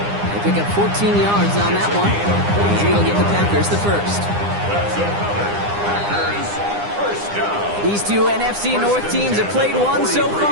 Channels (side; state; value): left; late; 9.8 ms